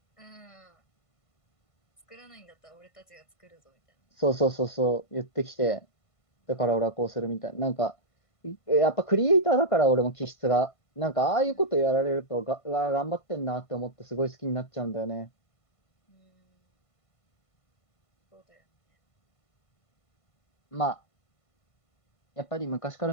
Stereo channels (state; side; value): late; right; 1.5 ms